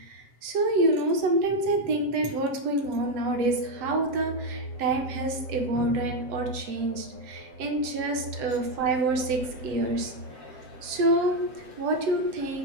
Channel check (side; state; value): left; late; 7.8 ms